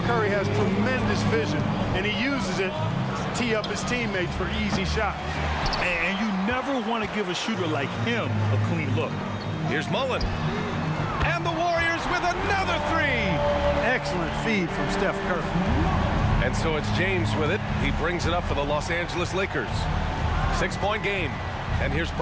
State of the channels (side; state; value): both; identical; correlation 1.00